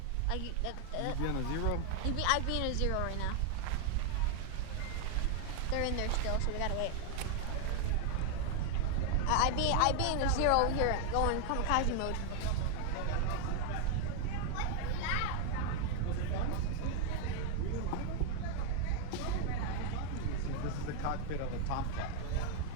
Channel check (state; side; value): different; both; correlation 0.00